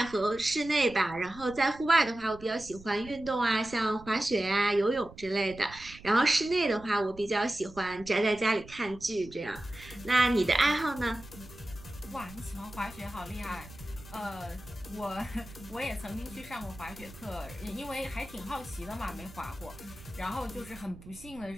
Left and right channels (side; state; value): right; noise; rumble, 18 dB below the sound